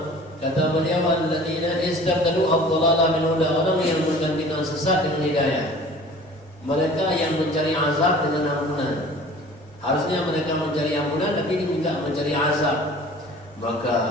Kata beliau, alladzina istabdalu ad-dhalala min huda, orang yang menggantikan sesat dengan hidayah. Mereka yang mencari azab dengan ampunan. Harusnya mereka mencari ampunan, tapi diminta mencari azab. Maka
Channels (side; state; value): both; normal; correlation 0.45